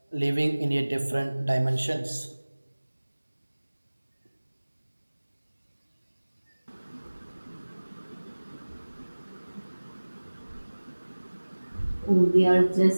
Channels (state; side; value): inverted; both; correlation -1.00